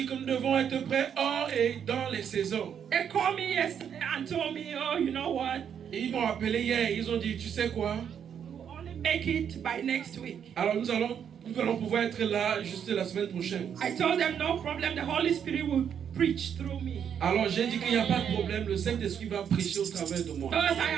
que nous devons être prêts hors et dans les saisons. They called me yesterday and told me, oh, you know what? Et ils m'ont appelé hier, ils ont dit, tu sais quoi? We'll only make it by next week. Alors nous allons pouvoir être là juste la semaine prochaine. I told them no problem, the Holy Spirit will preach through me. Alors j'ai dit qu'il n'y a pas de problème, le Saint-Esprit va prêcher au travers de moi. Because I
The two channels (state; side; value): quieter; left; 8.2 dB